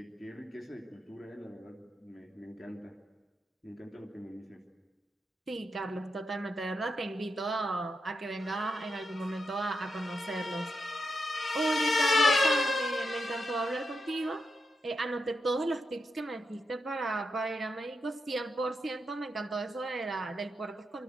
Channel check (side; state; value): both; normal; correlation 0.85